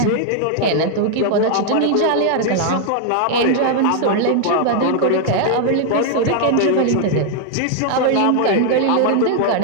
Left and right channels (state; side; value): different; both; correlation 0.00